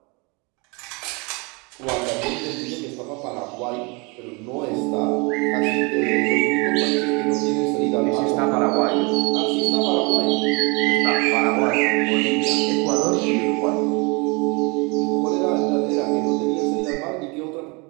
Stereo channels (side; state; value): left; quieter; 29.4 dB